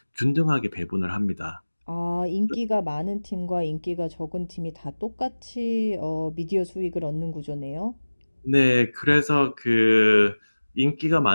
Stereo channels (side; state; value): both; inverted; correlation -1.00